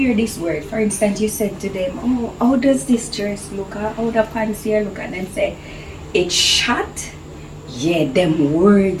this word, for instance, you said to them, "Oh, how does this dress look? Or how the pants here look?" And then say, "It's short." Yeah, them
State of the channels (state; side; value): identical; both; correlation 1.00